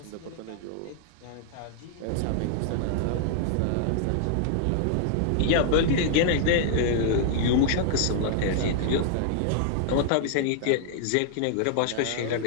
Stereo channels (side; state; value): both; different; correlation -0.01